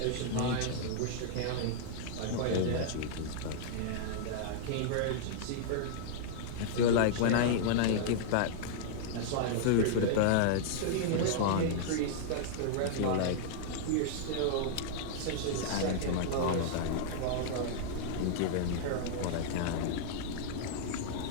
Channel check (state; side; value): different; both; correlation -0.01